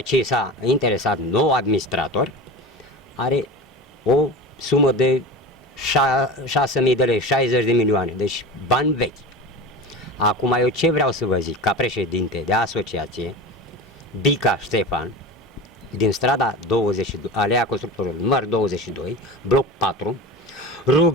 ce s-a interesat nou administrator, are o sumă de 6.000 de lei, 60 de milioane, deci bani vechi. Acum eu ce vreau să vă zic, ca președinte de asociație, Bica Ștefan, din strada 22, Alea Constructorului număr 22, bloc 4,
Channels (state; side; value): normal; both; correlation 0.30